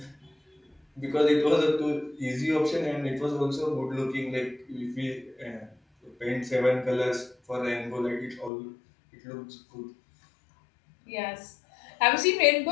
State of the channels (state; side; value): drops out; right; at 8.5 s